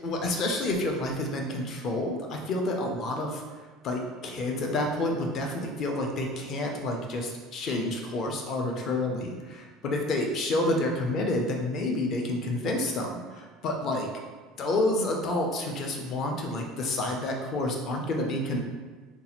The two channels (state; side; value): normal; both; correlation 0.43